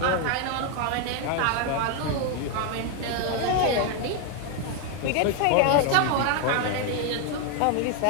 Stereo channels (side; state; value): both; different; correlation 0.01